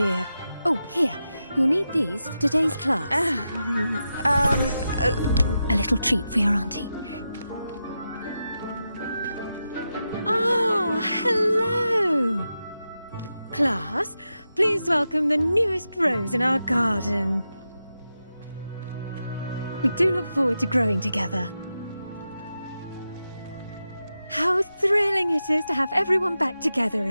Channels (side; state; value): both; inverted; correlation -0.89